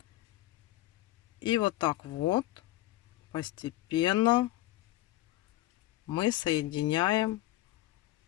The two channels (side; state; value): right; quieter; 16.2 dB